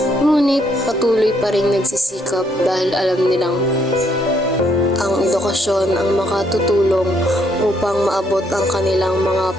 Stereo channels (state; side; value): normal; both; correlation 0.71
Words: Ngunit patuloy pa rin nagsisikap dahil alam nilang ang edukasyon ang makatutulong upang maabot ang kanilang mga